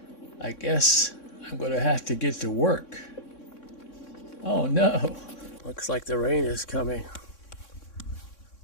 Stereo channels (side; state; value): right; late; 3.6 ms